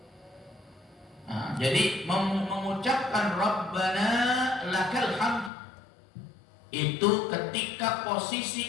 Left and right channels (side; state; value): right; drops out; at 5.5 s